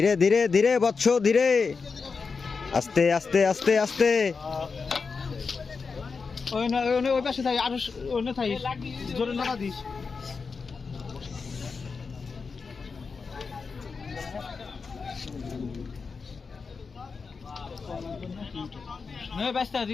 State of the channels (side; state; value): right; quieter; 4.9 dB